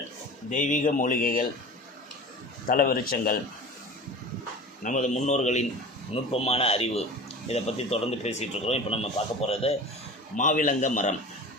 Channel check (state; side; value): normal; both; correlation 0.36